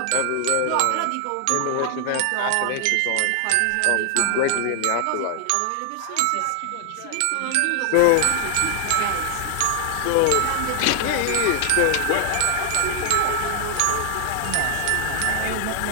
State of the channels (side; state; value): both; different; correlation 0.00